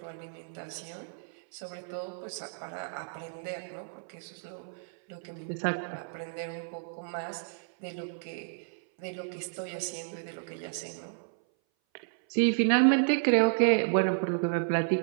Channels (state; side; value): silent; left; 57 dB below the other